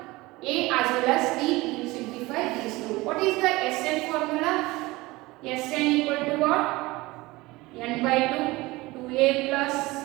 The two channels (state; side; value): quieter; left; 21.0 dB